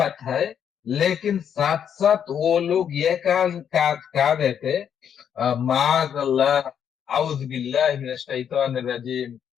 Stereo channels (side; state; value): right; quieter; 8.4 dB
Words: है, लेकिन साथ साथ वो लोग ये कहा देते, माज अल्लाह, औज बिल्लाह मिनश शैतानिर रजीम,